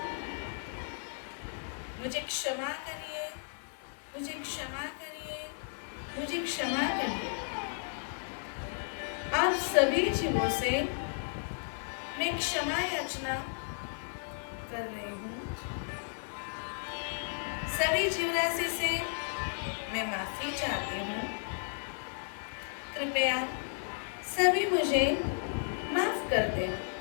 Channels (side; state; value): right; silent; 55 dB below the other